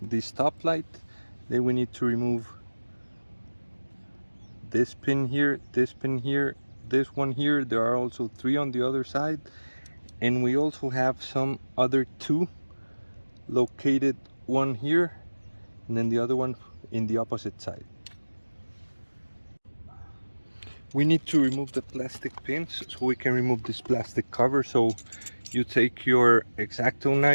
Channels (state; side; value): inverted; both; correlation -1.00